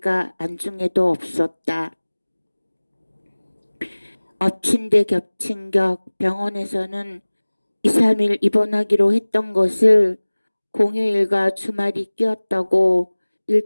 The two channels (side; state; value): both; inverted; correlation -1.00